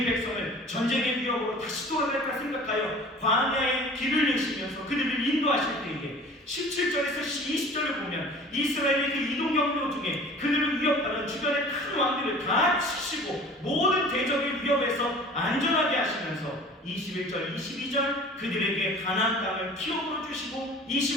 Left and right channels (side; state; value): both; normal; correlation 0.44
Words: 백성을 전쟁의 위협으로 다시 돌아갈까 생각하여 광야의 길을 내시면서 그들을 인도하실 때에, 17절에서 20절을 보면 이스라엘의 그 이동 경로 중에 그들을 위협하는 주변의 큰 왕들을 다 치시고 모든 대적의 위협에서 안전하게 하시면서, 21절, 22절 그들에게 가나안 땅을 기업으로 주시고,